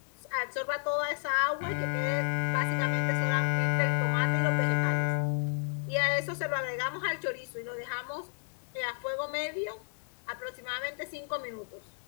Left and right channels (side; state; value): right; silent; digital silence